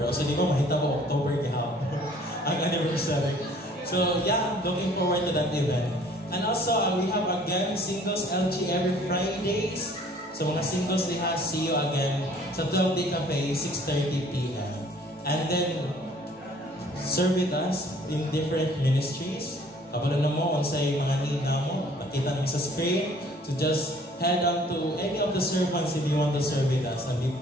So di ba mahita ko October gihapon ang anniversary. So yeah, looking forward to that event. And also, we have again Singles LG every Fridays. So mga singles diha, see you again sa 12 Day Cafe, 6:30 p.m. And then, serve with us in different ministries. Kabalo na mo, unsay mga need na mo, nakita namin sa screen. So just head on to any of the servants if you want to serve with us and be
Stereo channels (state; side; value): normal; both; correlation 0.55